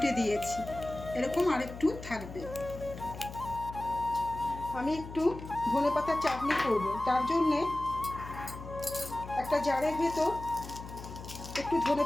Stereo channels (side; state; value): left; noise; hum, 12 dB below the sound